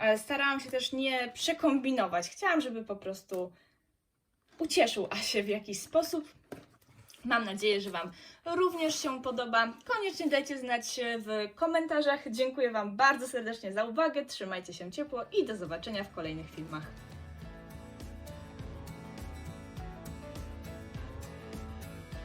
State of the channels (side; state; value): both; identical; correlation 1.00